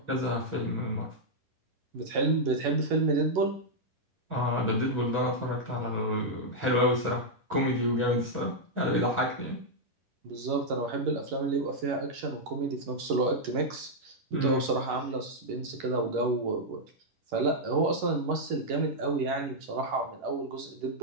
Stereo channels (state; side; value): late; left; 11 ms